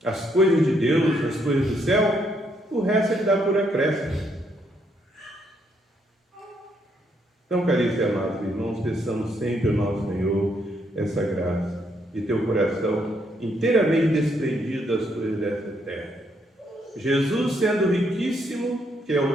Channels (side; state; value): both; normal; correlation 0.74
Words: As coisas de Deus, as coisas do céu, o resto Ele dá por acréscimo. Então, caríssimos e amados irmãos, peçamos sempre ao nosso Senhor essa graça de ter o coração inteiramente desprendido das coisas dessa terra. Jesus, sendo riquíssimo, que é